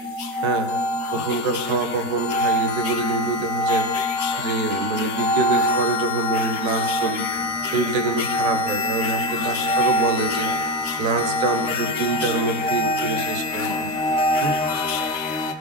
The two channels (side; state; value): left; late; 13 ms